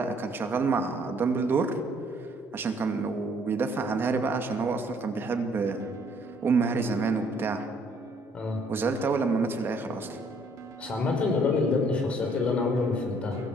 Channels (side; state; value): both; normal; correlation 0.63